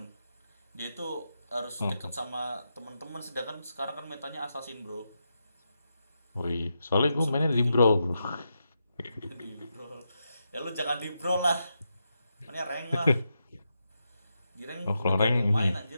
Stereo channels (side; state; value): both; inverted; correlation -0.86